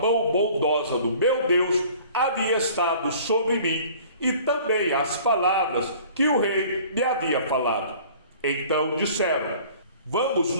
bondosa do meu Deus havia estado sobre mim, e também as palavras que o rei me havia falado. Então disseram: vamos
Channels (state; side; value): inverted; both; correlation -0.49